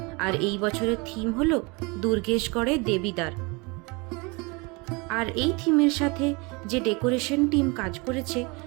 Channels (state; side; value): quieter; left; 27.8 dB